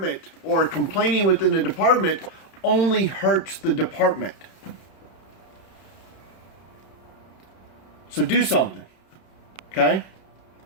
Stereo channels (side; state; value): right; late; 31 ms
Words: or complaining within the department only hurts the department. So do something, okay?